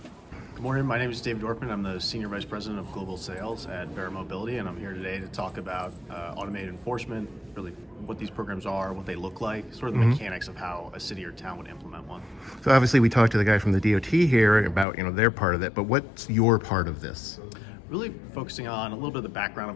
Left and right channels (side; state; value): right; drops out; at 14.9 s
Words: Good morning. My name is David Dorfman. I'm the Senior Vice President of Global Sales at Vera Mobility, and I'm here today to talk about automated enforcement, really what these programs are, what they look like, sort of the mechanics of how a city or town would implement one. So obviously we talked to the guy from the DOT here about, their part of it, but what's your part of this? Really focusing on a little bit of the background